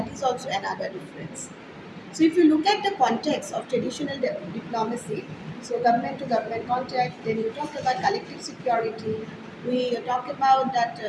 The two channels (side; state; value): both; identical; correlation 1.00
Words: is also another difference. So, if you look at the context of traditional diplomacy, so government to government contact, then you talk about collective security, we talk about that